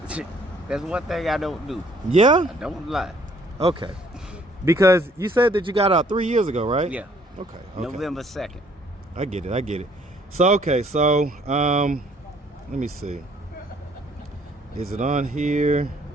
That's one thing I don't do. Yeah? I don't lie. Okay. Because you said that you got out 3 years ago, right? Yeah. Okay. November 2nd. I get it. So, okay, so, let me see. Is it on here?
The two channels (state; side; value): normal; both; correlation 0.61